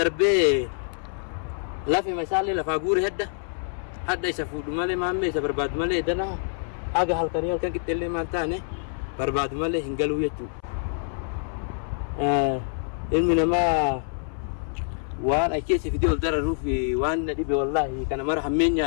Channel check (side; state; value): right; silent; 61 dB below the other